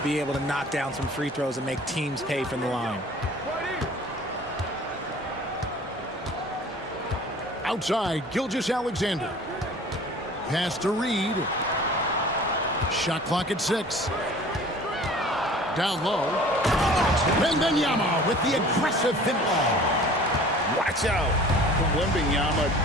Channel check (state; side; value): normal; both; correlation 0.46